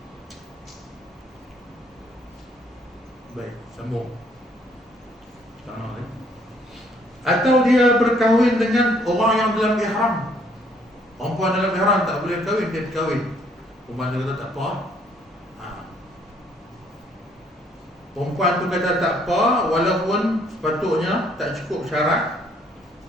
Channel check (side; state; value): both; normal; correlation 0.65